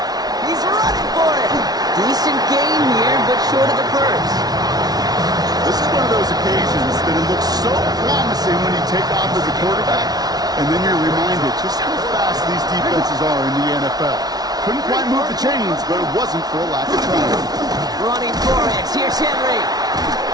He's running for it. Decent gain here, but short of the first. This is one of those occasions that it looks so promising when you take off as a quarterback, and then you're reminded just how fast these defenses are in the NFL. Couldn't quite move the chains, but it wasn't for a lack of trying. Running for it. Here's Henry.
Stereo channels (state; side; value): late; left; 0.19 ms